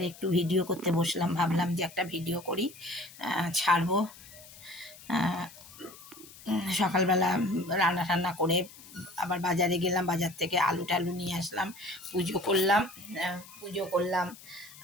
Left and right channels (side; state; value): left; noise; hiss, 19 dB below the sound